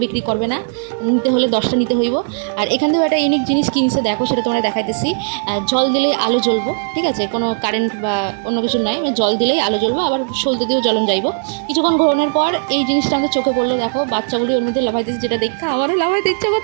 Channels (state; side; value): silent; left; digital silence